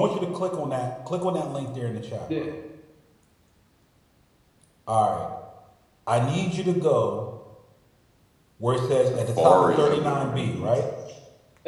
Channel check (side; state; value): both; identical; correlation 1.00